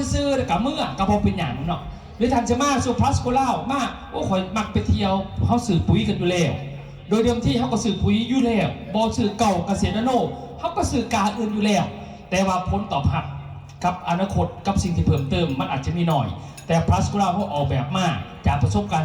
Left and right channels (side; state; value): both; identical; correlation 1.00